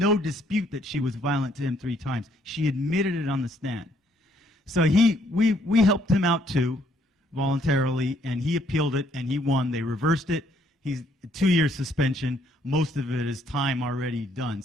dispute that she was violent to him 3 times. She admitted it on the stand. So we helped him out too, voluntarily, and he appealed it, and he won. They reversed it. He's 2-year suspension. Most of it is time already done,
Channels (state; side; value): normal; both; correlation 0.67